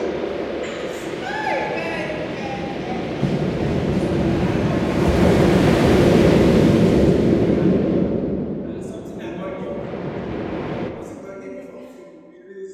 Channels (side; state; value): both; identical; correlation 1.00